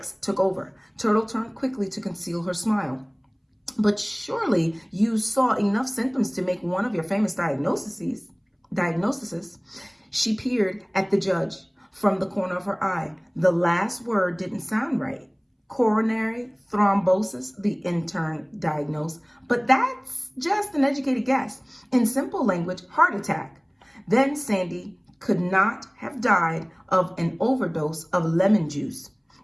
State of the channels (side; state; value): both; identical; correlation 1.00